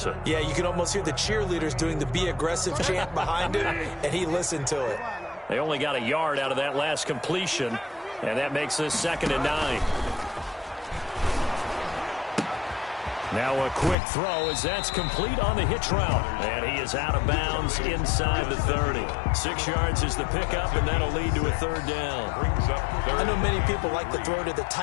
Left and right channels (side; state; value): right; drops out; at 14.0 s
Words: Yeah, you can almost hear the cheerleaders doing the be aggressive chant behind him, and he listened to it. They only got a yard out of that last completion, and that makes this 2nd and 9. Now a quick throw as that's complete on the hitch route. And he is out of bounds inside the 30. 6 yards is the pickup, and that'll lead to a 3rd down. I know many people like to throw to the